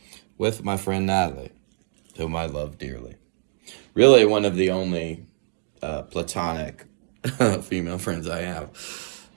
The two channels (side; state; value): left; silent; digital silence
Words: with my friend Natalie, whom I love dearly. Really, one of the only platonic female friends I have.